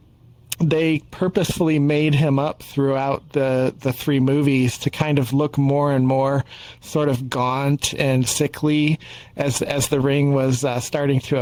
they purposefully made him up throughout the three movies to kind of look more and more sort of gaunt and sickly as the ring was starting to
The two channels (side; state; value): both; identical; correlation 1.00